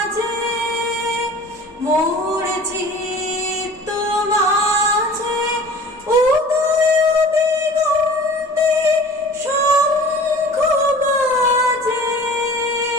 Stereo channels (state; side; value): normal; both; correlation 0.43